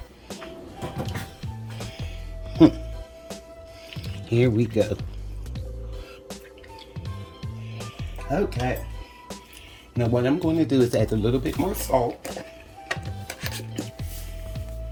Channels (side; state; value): both; identical; correlation 1.00